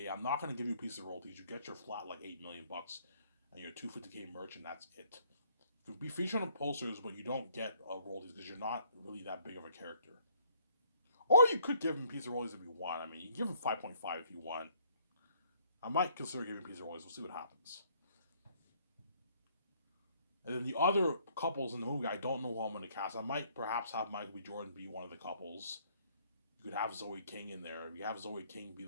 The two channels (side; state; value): both; inverted; correlation -0.63